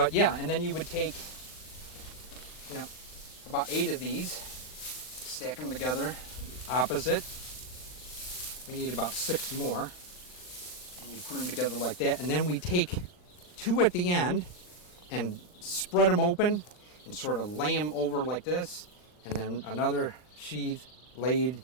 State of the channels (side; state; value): right; late; 39 ms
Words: yeah, and then you would take about 8 of these, stack them together, opposite. We need about 6 more. And you put them together like that, and then we take 2 at the end and spread them open and sort of lay them over like this, and then another sheath laid